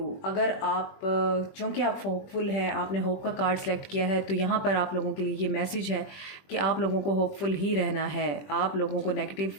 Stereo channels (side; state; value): right; late; 21 ms